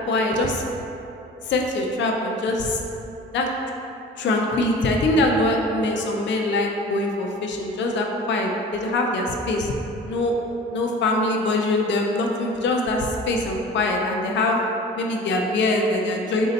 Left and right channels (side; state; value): both; normal; correlation 0.40